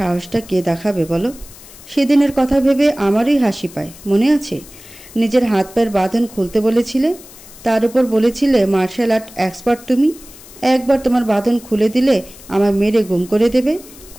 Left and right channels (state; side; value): noise; left; hiss, 20 dB below the sound